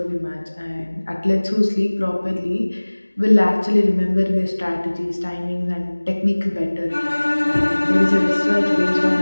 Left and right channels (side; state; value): both; inverted; correlation -1.00